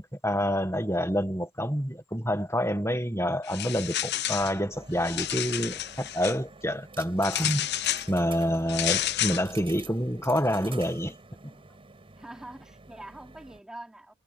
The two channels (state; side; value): normal; both; correlation 0.71